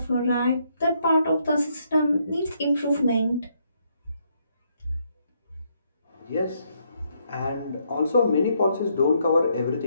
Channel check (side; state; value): both; inverted; correlation -0.74